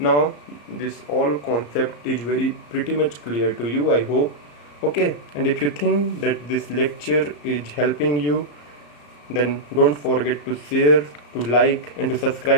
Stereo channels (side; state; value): right; late; 34 ms